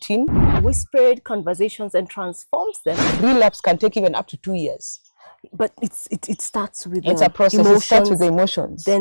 Whispered conversations and transforms them. Relapse can take even up to 2 years. But it starts with it's a process. emotions, it starts with the emotions.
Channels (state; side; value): inverted; both; correlation -1.00